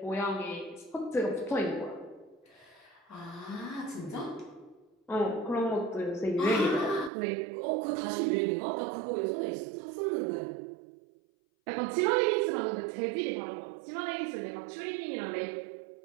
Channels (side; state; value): left; drops out; at 7.1 s